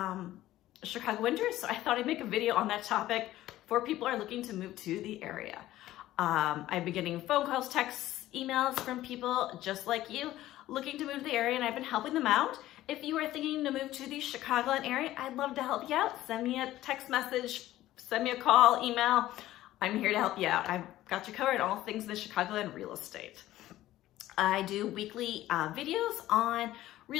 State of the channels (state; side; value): quieter; right; 14.9 dB